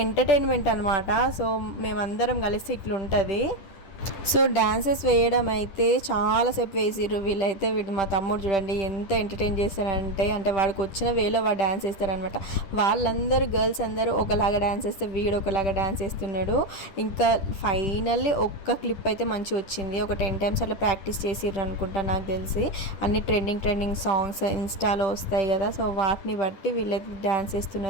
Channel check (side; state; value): right; late; 10 ms